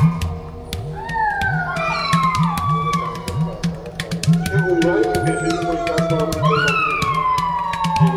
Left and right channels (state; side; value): identical; both; correlation 1.00